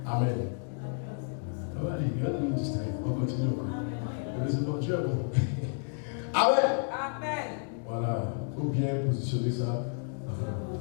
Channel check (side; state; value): right; silent; 57 dB below the other